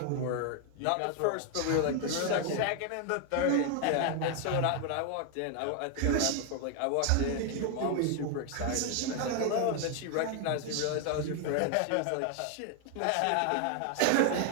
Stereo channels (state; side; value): different; both; correlation 0.00